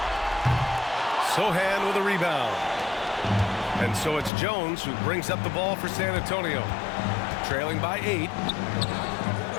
Sohan with a rebound. And so it's Jones who brings up the ball for San Antonio. Trailing by 8.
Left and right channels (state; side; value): drops out; right; at 4.3 s